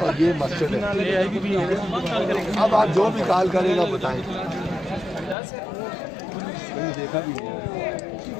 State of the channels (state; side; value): drops out; right; at 5.4 s